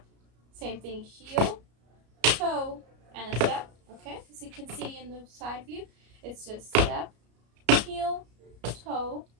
Same thing, heel, toe, and a step. Okay, as you can see in the side view, it's just step, heel, toe,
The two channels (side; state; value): left; late; 33 ms